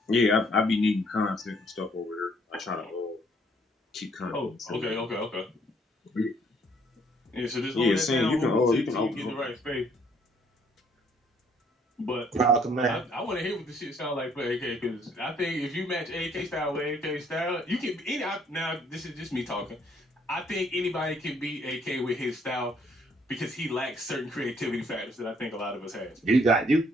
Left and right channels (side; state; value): both; normal; correlation 0.65